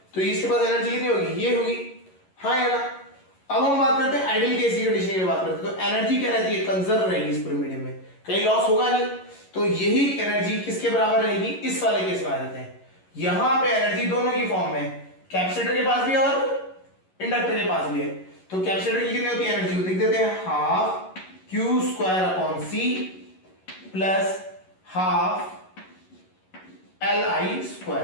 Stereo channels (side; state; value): right; late; 11 ms